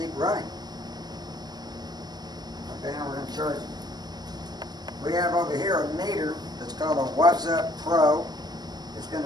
running. Okay, now we're going to charge it. We have over here a meter that's called a What's Up Pro. It's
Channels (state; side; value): late; left; 0.20 ms